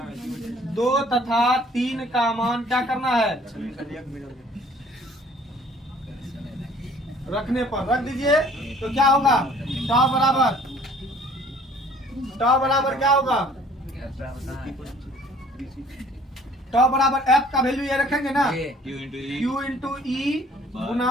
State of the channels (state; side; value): normal; both; correlation 0.55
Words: 2 तथा 3 का मान क्या करना है? रखने पर रख दीजिए, तो क्या होगा? टाउ बराबर क्या होगा? टाउ बराबर F का वैल्यू ये रखेंगे ना, Q इंटू E